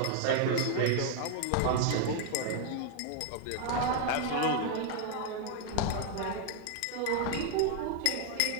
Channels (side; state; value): both; different; correlation 0.00